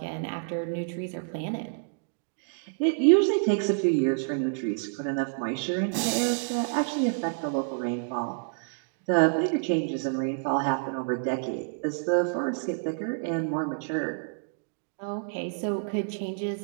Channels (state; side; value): silent; left; digital silence